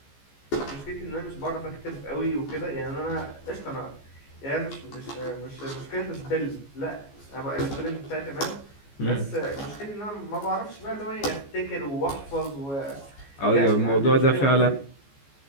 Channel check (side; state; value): right; late; 14 ms